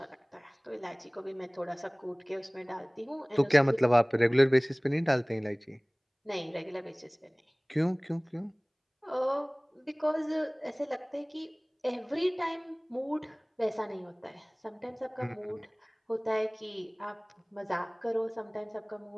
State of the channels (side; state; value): both; identical; correlation 1.00